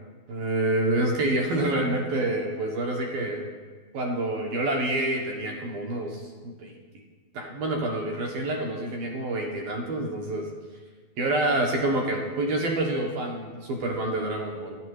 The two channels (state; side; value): late; left; 12 ms